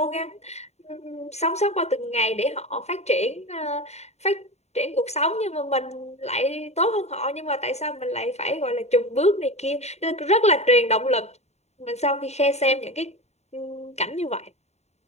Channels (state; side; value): late; right; 0.32 ms